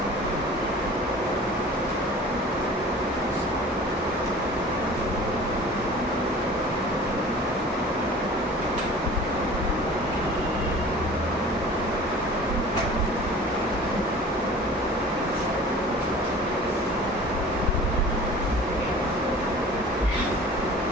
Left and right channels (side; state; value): both; normal; correlation 0.43